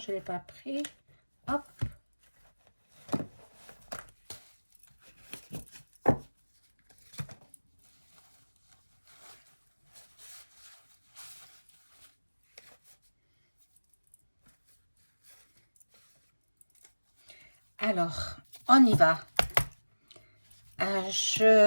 ne l'ai pas pris. Hop. Alors, on y va.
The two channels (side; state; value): both; inverted; correlation -1.00